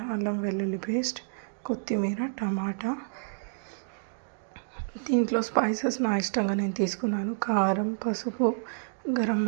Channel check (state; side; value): silent; left; digital silence